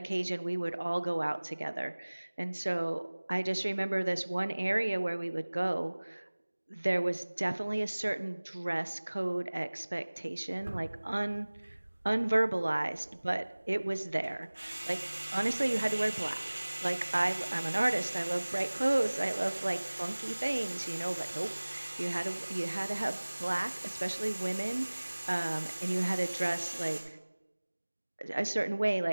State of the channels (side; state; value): both; inverted; correlation -1.00